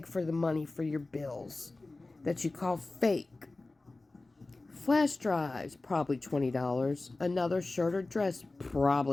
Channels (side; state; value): right; quieter; 3.2 dB